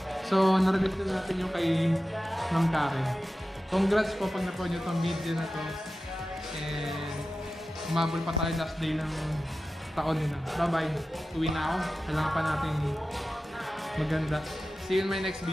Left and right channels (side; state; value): both; normal; correlation 0.94